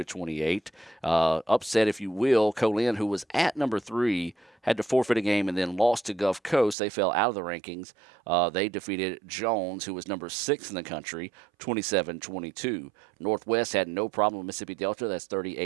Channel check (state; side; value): drops out; left; at 6.8 s